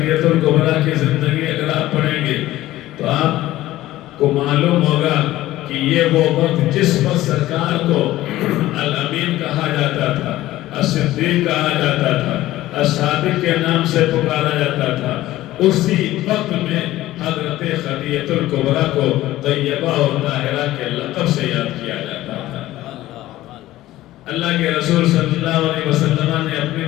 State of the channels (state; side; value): quieter; right; 15.7 dB